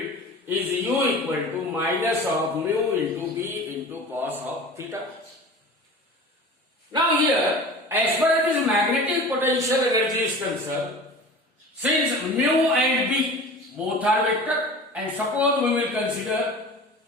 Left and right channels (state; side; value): normal; both; correlation 0.37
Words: is U equal to minus of mu into B into cos of theta. Now here, as far as this magnetic potential energy is concerned, since mu and B both are vector, and suppose we will consider